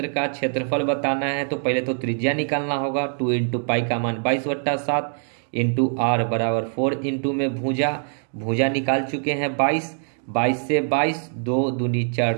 का क्षेत्रफल बताना है तो पहले तो त्रिज्या निकालना होगा। 2 इंटू पाई का मान 22/7 इंटू आर बराबर 4 इंटू में भुजा, भुजा निकाल चुके हैं 22, 22 से 22 2 दूनी 4,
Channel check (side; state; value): left; silent; 59 dB below the other